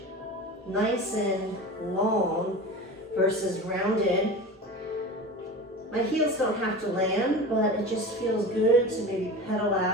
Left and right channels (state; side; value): normal; both; correlation 0.32